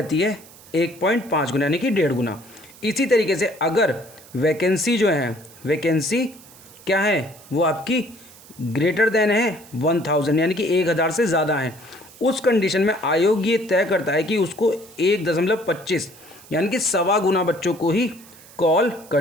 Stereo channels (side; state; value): right; noise; hiss, 22 dB below the sound